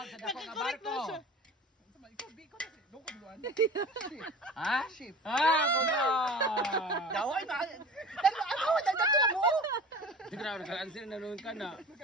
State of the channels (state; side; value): normal; both; correlation 0.38